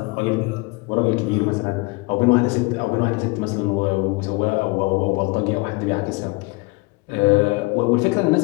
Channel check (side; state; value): right; quieter; 25.7 dB